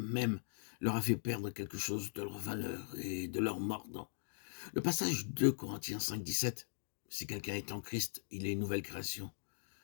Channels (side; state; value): right; silent; digital silence